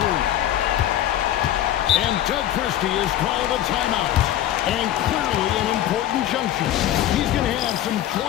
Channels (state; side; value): quieter; right; 12.4 dB